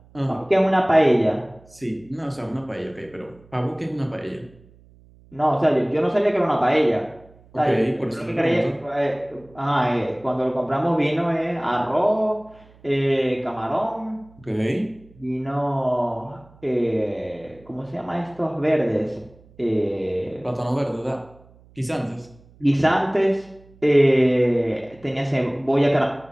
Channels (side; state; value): right; noise; hum, 27 dB below the sound